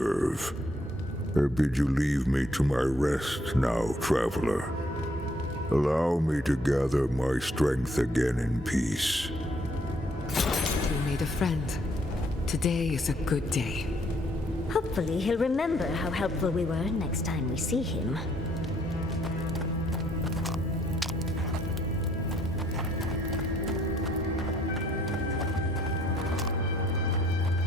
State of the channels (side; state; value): both; normal; correlation 0.67